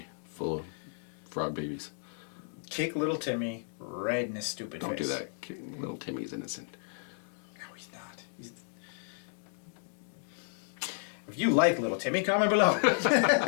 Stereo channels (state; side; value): silent; right; digital silence